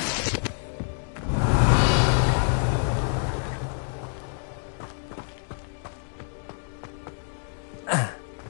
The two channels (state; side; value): silent; right; digital silence